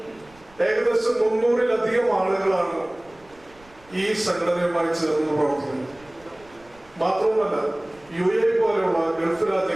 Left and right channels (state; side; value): noise; right; rumble, 28 dB below the sound